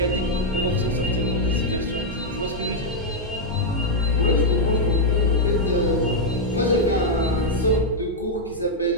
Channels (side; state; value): both; normal; correlation -0.02